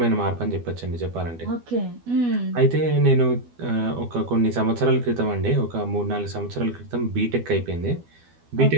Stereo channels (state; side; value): late; left; 12 ms